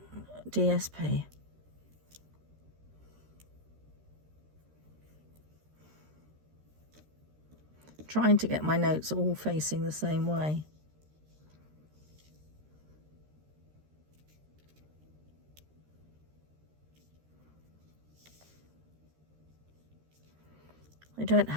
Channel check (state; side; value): late; left; 13 ms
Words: DSP. Trying to get my notes all facing the same way. They don't